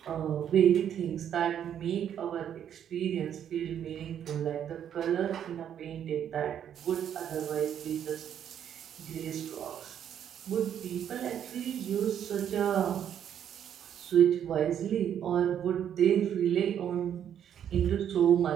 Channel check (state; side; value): quieter; left; 9.4 dB